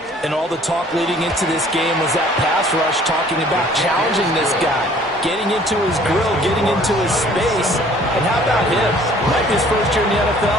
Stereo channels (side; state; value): both; normal; correlation 0.55